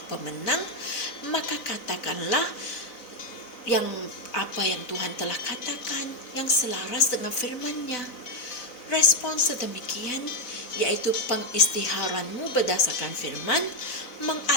pemenang, maka katakanlah apa yang Tuhan telah katakan yang selaras dengan firman-Nya. Respon sedemikian, yaitu pengistiharanmu berdasarkan firman,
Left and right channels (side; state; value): right; late; 4.0 ms